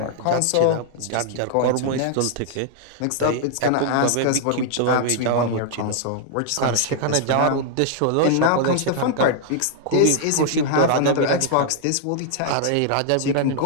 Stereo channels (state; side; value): different; both; correlation 0.00